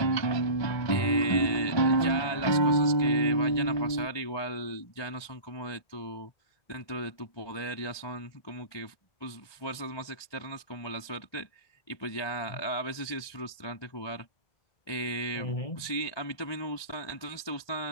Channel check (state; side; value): late; right; 1.2 ms